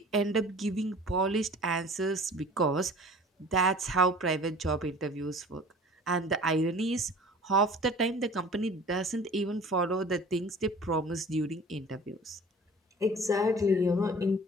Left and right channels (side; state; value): both; normal; correlation 0.45